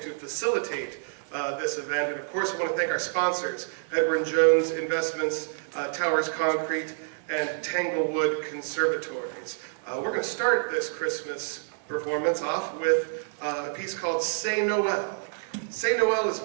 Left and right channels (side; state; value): left; silent; digital silence